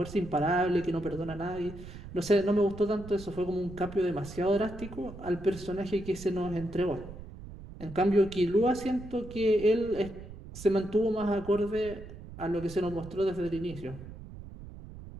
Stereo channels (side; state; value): right; noise; rumble, 14 dB below the sound